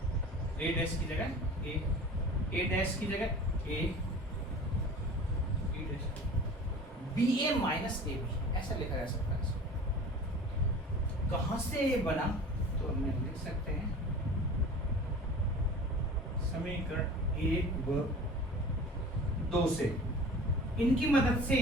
ए डैश की जगह ए डैश की जगह A B dash B A minus A B ऐसा लिखा जा सकता है। कहां से ये बना, तो हम लिख सकते हैं समीकरण 1 व 2 से, इनकी मदद से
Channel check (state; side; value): normal; both; correlation 0.40